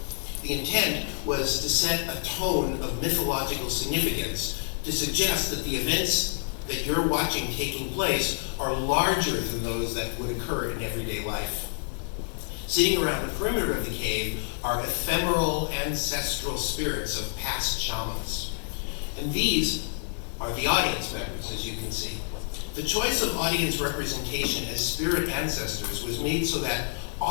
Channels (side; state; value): right; silent; 59 dB below the other